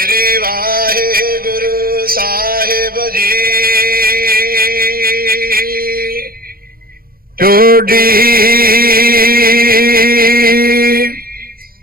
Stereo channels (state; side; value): late; left; 0.43 ms